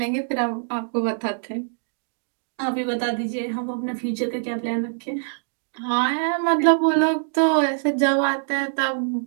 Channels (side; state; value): left; silent; digital silence